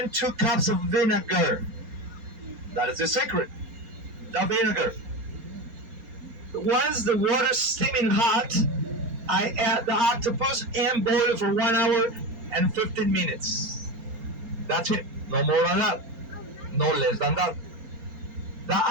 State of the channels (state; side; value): late; left; 4.3 ms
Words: 2 cups of vinegar. That is the secret. The vinegar. Once the water's steaming hot, I add the octopus and boil it for 1 hour and 15 minutes. That's it. No more than that. No less than that. The